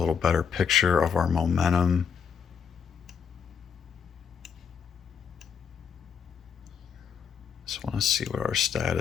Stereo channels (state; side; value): quieter; right; 6.8 dB